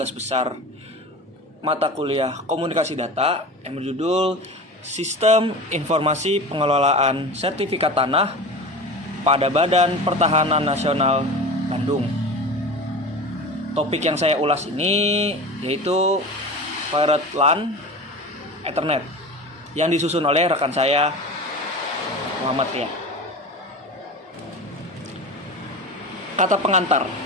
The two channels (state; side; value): normal; both; correlation 0.31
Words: besar mata kuliah Komunikasi Data yang berjudul Sistem Informasi Pengelolaan Sertifikat Tanah pada Badan Pertahanan Nasional Bandung. Topik yang saya ulas ini yaitu Pirate LAN Ethernet yang disusun oleh rekan saya Muhammad Ria. Kata pengantar.